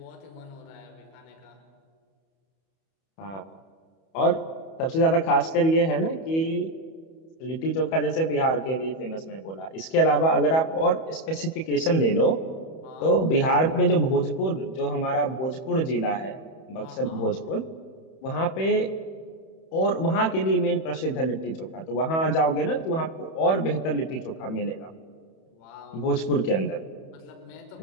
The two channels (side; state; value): right; late; 31 ms